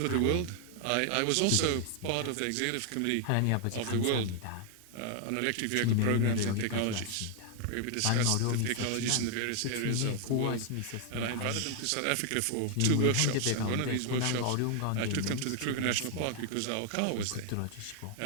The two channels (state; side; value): different; both; correlation 0.00